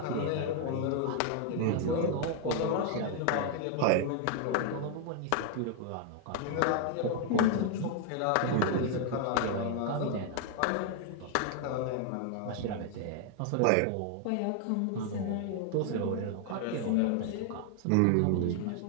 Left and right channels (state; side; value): different; both; correlation 0.00